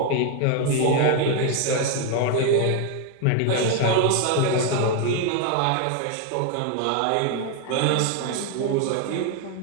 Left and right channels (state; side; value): different; both; correlation 0.00